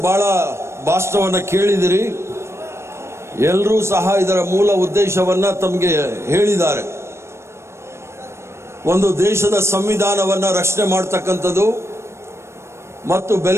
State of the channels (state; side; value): late; left; 0.13 ms